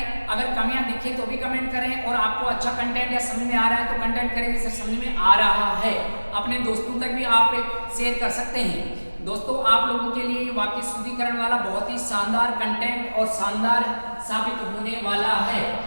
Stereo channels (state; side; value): inverted; both; correlation -1.00